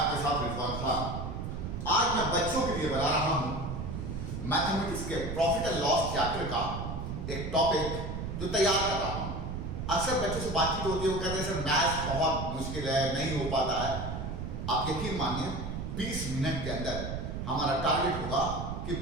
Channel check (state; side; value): noise; right; rumble, 5 dB below the sound